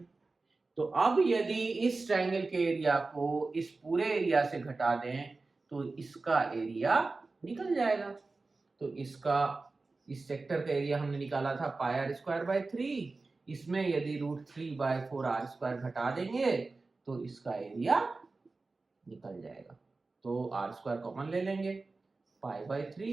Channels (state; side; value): quieter; left; 3.7 dB